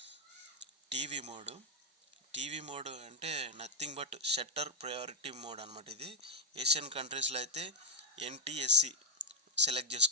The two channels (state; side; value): normal; both; correlation 0.06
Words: టీవీ మోడ్ అంటే nothing but shutter priority mode అనమాట. ఇది ఏషియన్ కంట్రీస్లో అయితే NTSC సెలెక్ట్